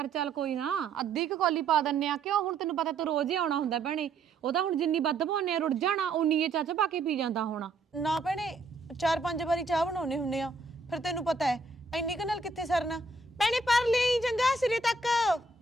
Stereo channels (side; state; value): left; quieter; 3.6 dB